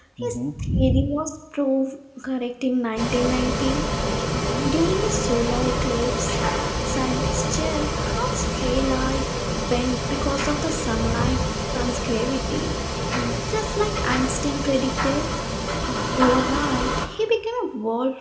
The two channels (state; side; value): identical; both; correlation 1.00